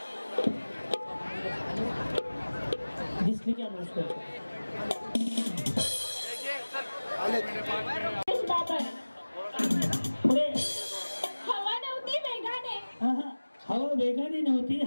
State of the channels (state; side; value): inverted; both; correlation -1.00